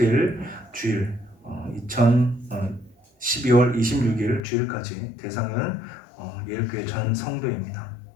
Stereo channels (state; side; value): drops out; right; at 4.4 s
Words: 주일 12월 26일 주일까지 대상은 예일교회 전 성도입니다.